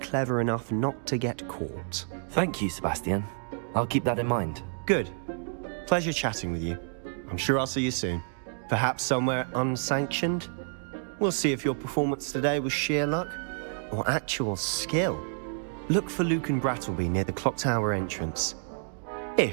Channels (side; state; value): left; silent; digital silence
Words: enough not to get caught. Thank you, Sebastian. I'll keep that in mind. Good. Pleasure chatting with you. I'm sure I'll see you soon. Perhaps somewhere unsanctioned? We'll see if your performance today was sheer luck or actual skill. Look for Luke and Brattleby near the clock tower entrance,